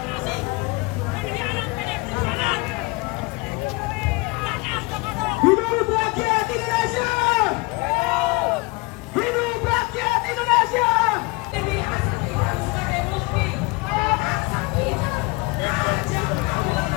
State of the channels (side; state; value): right; quieter; 25.8 dB